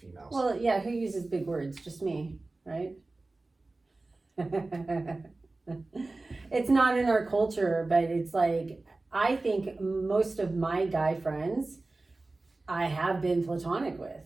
females. Well, yeah, who uses big words? Just me, right? It's not in our culture, but it's like, I think most of my guy friends I have been platonic with,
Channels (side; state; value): left; quieter; 3.2 dB